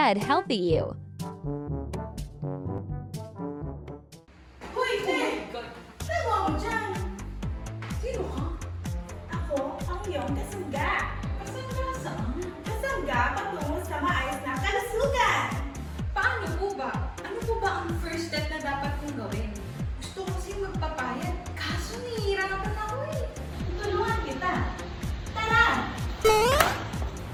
healthy you. Hoy, Ted! Saan mo ako dyan? Sino ka? Ako, ang iyong kasangga. Kasangga saan? Kasangga patungo sa maayos na kalusugan. Paano po ba? Ano po ba ang first step na dapat kong gawin? Gusto ko kasi magpapayat, kaso nahihirapan ako eh. Tulungan kita. Tara!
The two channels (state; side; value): identical; both; correlation 1.00